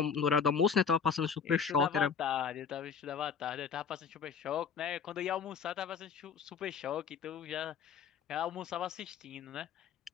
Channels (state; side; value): quieter; right; 6.5 dB